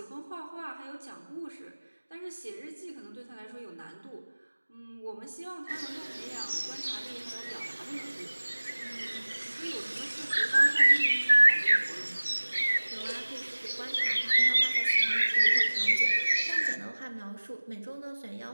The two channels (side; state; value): both; inverted; correlation -1.00